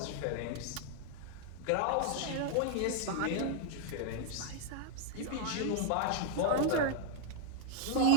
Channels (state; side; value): different; both; correlation 0.00